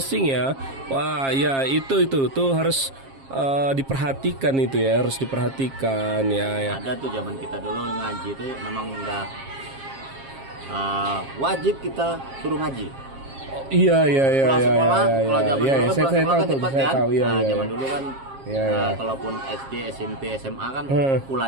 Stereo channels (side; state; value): left; late; 7.4 ms